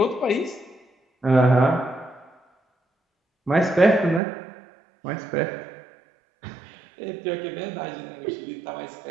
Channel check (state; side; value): drops out; left; at 4.2 s